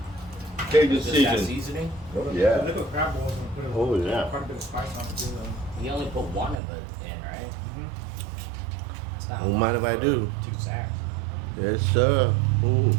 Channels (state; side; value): drops out; left; at 6.6 s